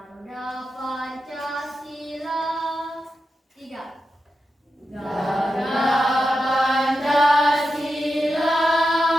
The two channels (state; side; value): normal; both; correlation 0.89